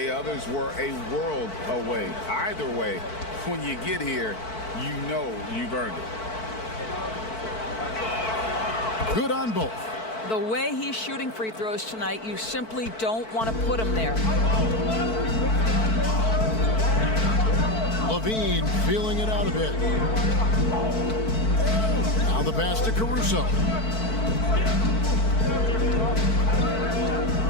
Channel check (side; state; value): right; late; 4.5 ms